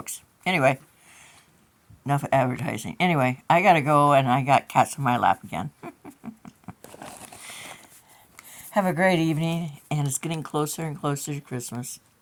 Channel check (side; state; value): both; identical; correlation 1.00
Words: Anyway, enough advertising. Anyway, I gotta go, and I got cats in my lap again. Have a great evening, and it's getting closer and closer to Christmas.